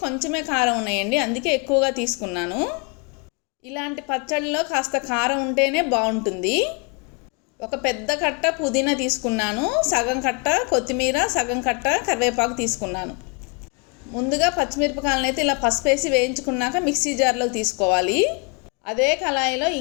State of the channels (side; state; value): right; quieter; 33.9 dB